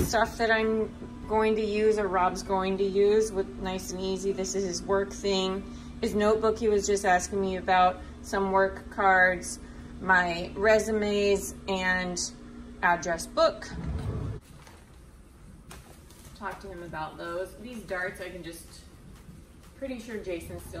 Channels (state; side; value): identical; both; correlation 1.00